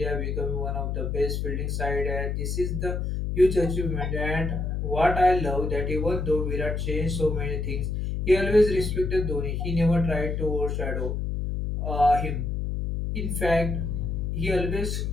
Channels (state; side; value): noise; left; hum, 1 dB below the sound